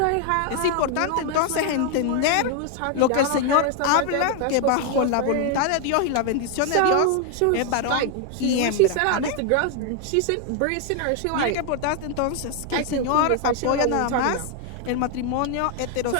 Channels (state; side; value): different; both; correlation 0.00